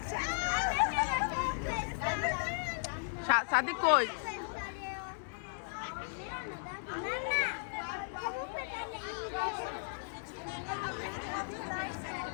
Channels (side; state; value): right; silent; digital silence